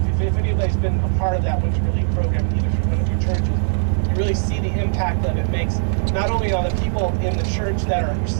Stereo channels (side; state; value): left; silent; digital silence